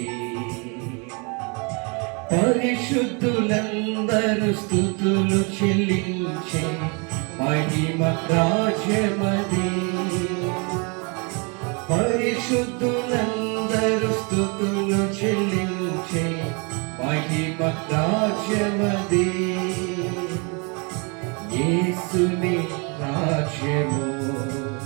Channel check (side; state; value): left; quieter; 33.0 dB